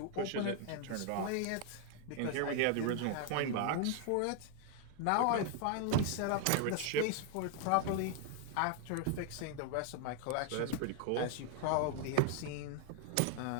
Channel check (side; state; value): both; different; correlation 0.00